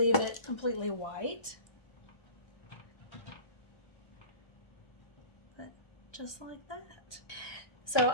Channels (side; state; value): right; late; 1.2 ms